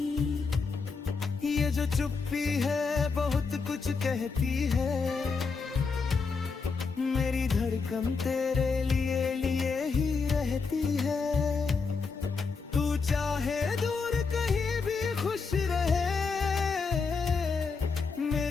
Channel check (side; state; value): right; quieter; 4.8 dB